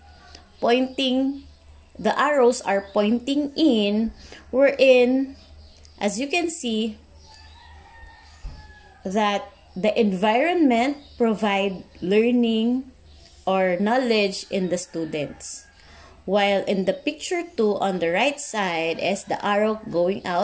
the arrows are pointing in, wherein, as you can see, that the environment provide learning or knowledge in the students. While in the picture 2 on the right side is the arrow going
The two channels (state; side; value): identical; both; correlation 1.00